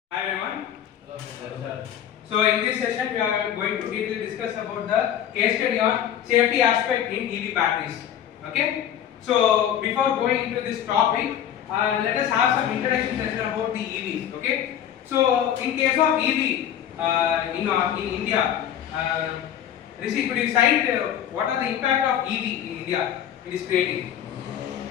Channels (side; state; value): right; quieter; 10.1 dB